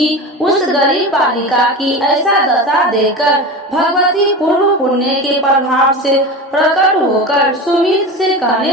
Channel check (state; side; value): normal; both; correlation 0.27